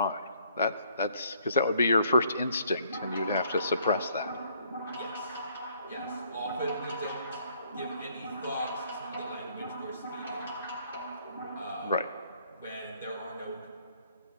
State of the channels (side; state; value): both; inverted; correlation -0.65